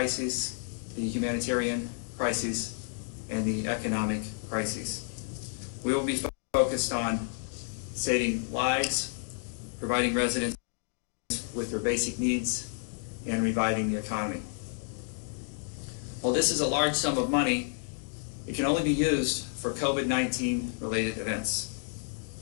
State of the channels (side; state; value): right; silent; 57 dB below the other